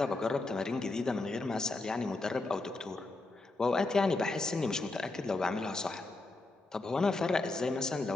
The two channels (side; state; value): right; quieter; 3.2 dB